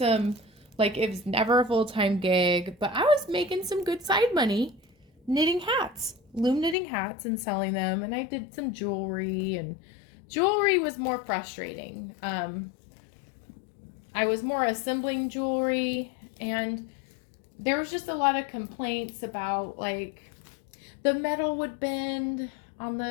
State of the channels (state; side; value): drops out; right; at 6.8 s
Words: like, it was never a full-time gig, but I was making some good side money knitting hats, loom knitting hats and selling them. And I did some jewelry, and jewelry was more frustrating. I was more assembling jewelry, and there was just a lot of complaints about, like, the metal would bend on